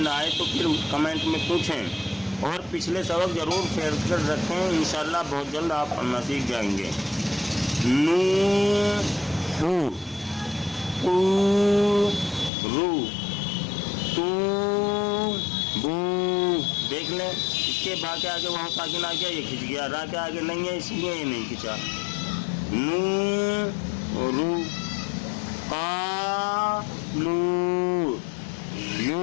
نہ آئے تو پھر کمنٹ میں پوچھیں اور پچھلے سبق ضرور شیئر کر رکھیں. انشاءاللہ بہت جلد آپ پڑھنا سیکھ جائیں گے. نو ہو او رو تو بو. دیکھ لیں اس کے با کے آگے وہاں ساکن آ گیا, یہ کھنچ گیا. را کے آگے نہیں ہے اس لیے یہ نہیں کھنچا. نو رو قا لو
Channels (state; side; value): drops out; right; at 12.5 s